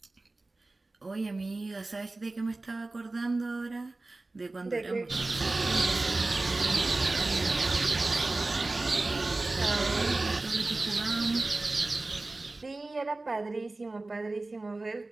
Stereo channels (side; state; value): left; quieter; 3.1 dB